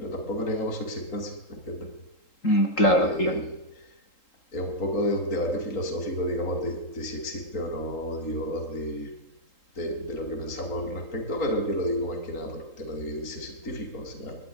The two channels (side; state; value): right; late; 3.8 ms